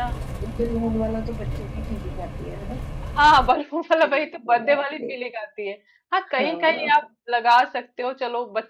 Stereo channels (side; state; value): both; identical; correlation 1.00